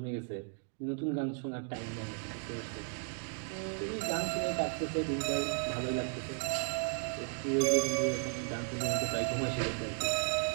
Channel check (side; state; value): left; silent; 54 dB below the other